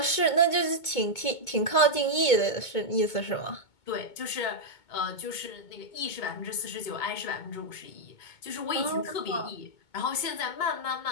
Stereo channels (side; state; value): right; late; 2.2 ms